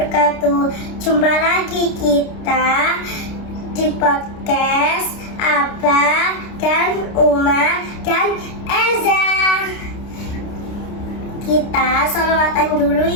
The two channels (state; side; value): late; right; 29 ms